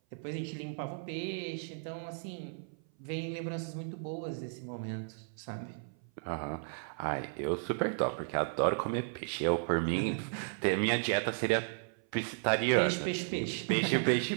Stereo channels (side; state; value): left; silent; 55 dB below the other